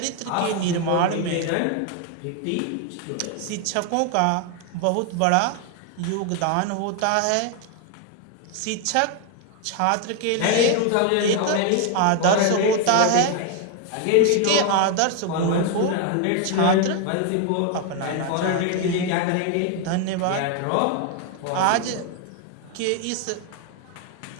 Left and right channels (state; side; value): different; both; correlation 0.01